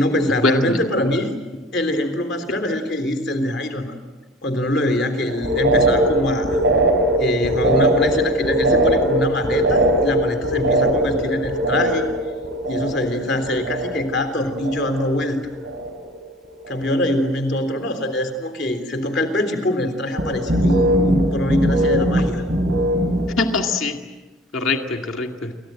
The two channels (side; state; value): both; normal; correlation 0.39